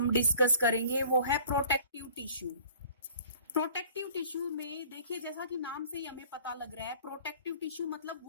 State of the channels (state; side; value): inverted; both; correlation -0.50